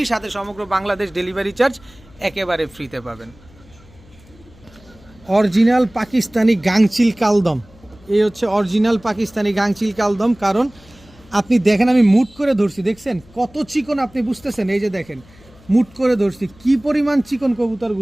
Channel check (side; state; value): left; noise; hum, 26 dB below the sound